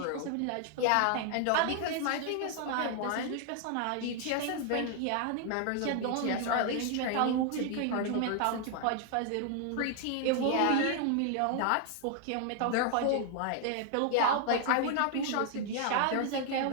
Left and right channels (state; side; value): different; both; correlation 0.00